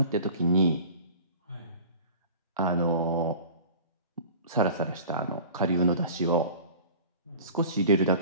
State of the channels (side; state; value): both; inverted; correlation -0.41